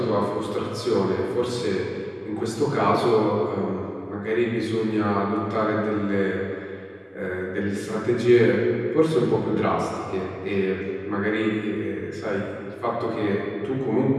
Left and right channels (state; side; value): identical; both; correlation 1.00